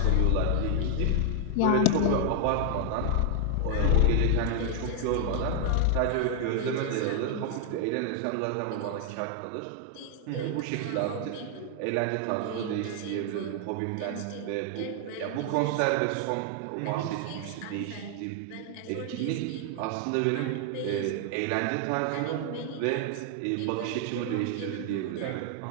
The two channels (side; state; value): both; different; correlation 0.00